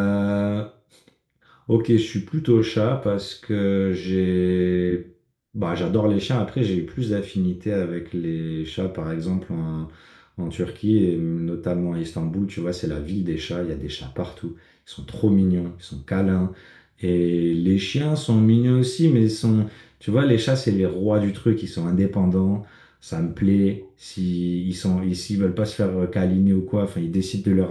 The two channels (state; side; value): identical; both; correlation 1.00